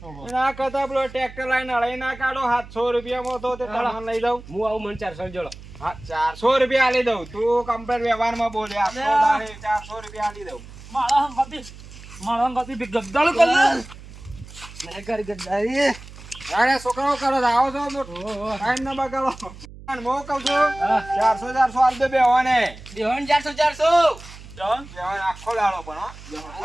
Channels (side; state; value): right; noise; hum, 17 dB below the sound